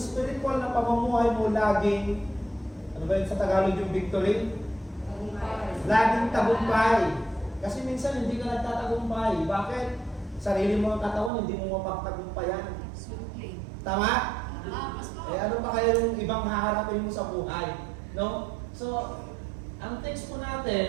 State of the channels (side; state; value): left; drops out; at 11.3 s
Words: na pamumuhay mo laging, ano ba yun sa Tagalog yung victory? Laging tagumpay. Kasi minsan hindi ka nagtatagumpay. Bakit? Sarili mo ang katawan, hindi mo mapagtagumpayan. Tama? Eh ano pa kaya yung ibang haharapin mo sa buhay? No? So, ang text po